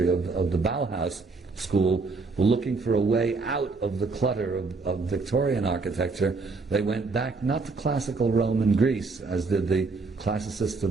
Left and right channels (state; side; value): quieter; left; 4.0 dB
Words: of the Bauhaus school were looking for a way out of the clutter of Victorian architecture, they went back not to classical Rome and Greece, as did the classicists